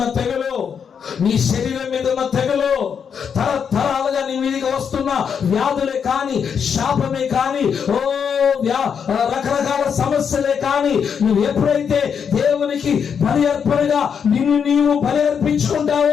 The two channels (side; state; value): right; quieter; 7.1 dB